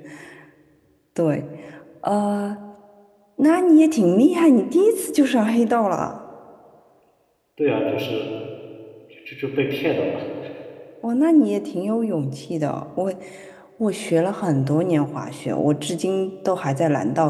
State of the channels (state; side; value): identical; both; correlation 1.00